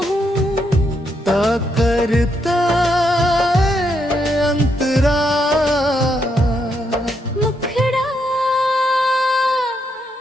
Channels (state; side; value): normal; both; correlation 0.78